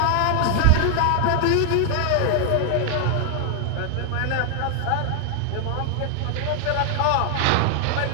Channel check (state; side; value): different; both; correlation 0.00